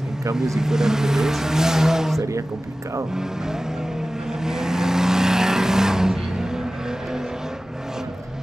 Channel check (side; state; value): both; normal; correlation 0.96